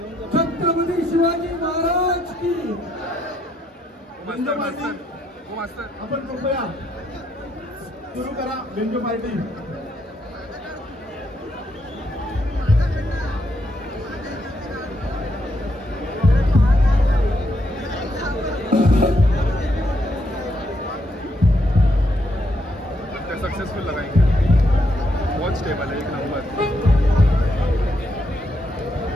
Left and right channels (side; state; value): both; normal; correlation 0.77